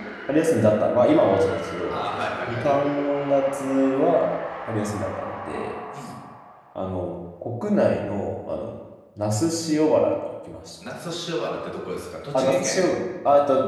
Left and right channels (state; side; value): identical; both; correlation 1.00